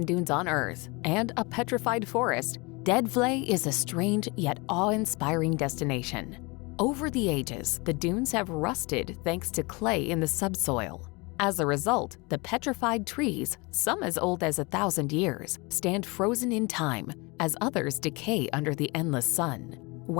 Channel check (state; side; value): quieter; right; 27.3 dB